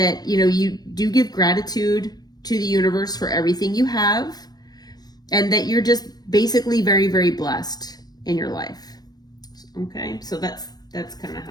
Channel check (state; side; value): late; right; 0.19 ms